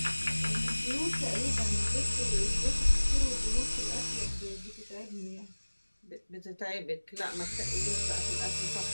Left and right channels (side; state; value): both; inverted; correlation -1.00